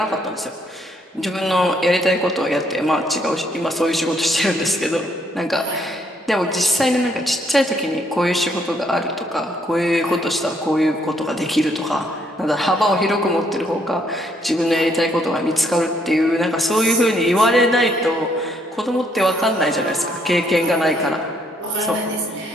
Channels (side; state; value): both; normal; correlation 0.70